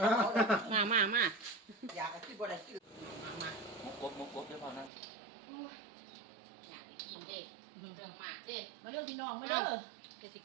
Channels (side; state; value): left; drops out; at 4.9 s